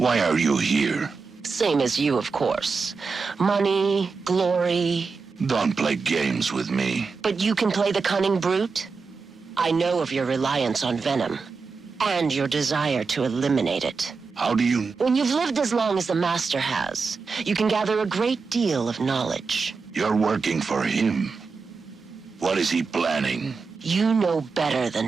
are you here? Same as you, of course. Money, glory. Don't play games with me. But you can play the cunning brute? I know of your reliance on venom, and your desire to eliminate it. How do you... When you've lived as long as the Master has, you can gather a great deal of knowledge. You're working for him. What is he planning? You know better than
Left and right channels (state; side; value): quieter; left; 4.8 dB